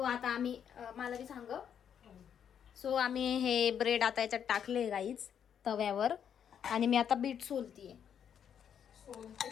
आता आम्ही मला बी सांग. सो आम्ही हे ब्रेड आता याच्यात टाकले गाईज तव्यावर, आणि मी आता बीट सोलतीये.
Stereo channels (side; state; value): right; quieter; 8.5 dB